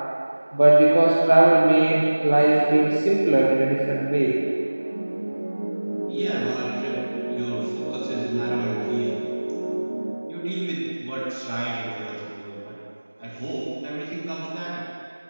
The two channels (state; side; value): inverted; both; correlation -1.00